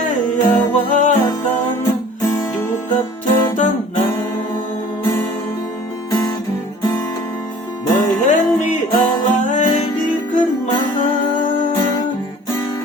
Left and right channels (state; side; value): normal; both; correlation 0.48